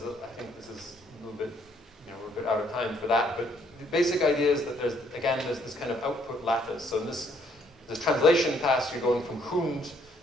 I think this is a little bit, we're a bit out of time for that, but the basic idea is that there's this kind of output lattice. So in this translation task, you're going from Hund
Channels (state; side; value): normal; both; correlation 0.67